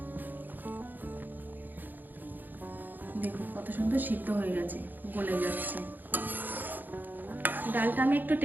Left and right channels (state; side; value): late; left; 0.088 ms